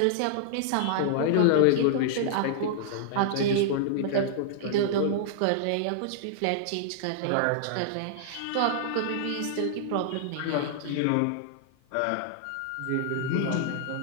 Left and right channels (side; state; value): both; different; correlation -0.01